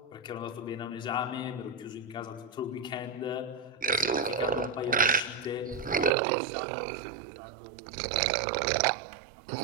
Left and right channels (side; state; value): left; drops out; at 6.1 s